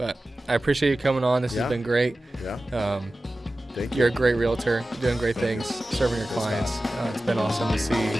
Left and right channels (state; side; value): normal; both; correlation 0.95